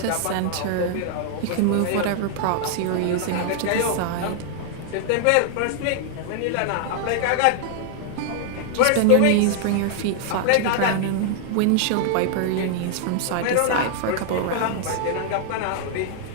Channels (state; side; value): different; both; correlation -0.01